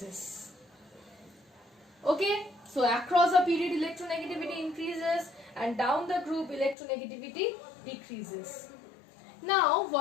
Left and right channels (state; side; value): drops out; right; at 6.8 s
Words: Okay, so across a period electronegativity increases and down the group electronegativity decreases. Now,